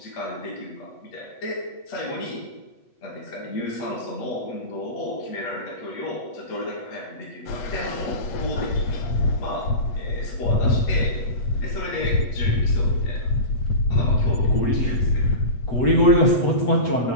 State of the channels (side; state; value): right; late; 8.2 ms